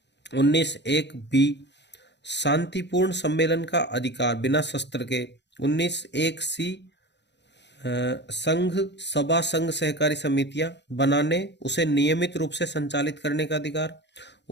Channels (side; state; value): right; late; 0.51 ms